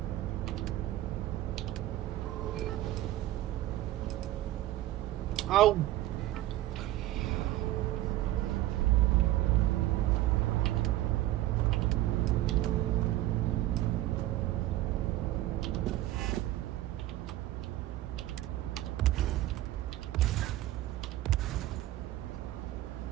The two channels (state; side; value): quieter; left; 15.1 dB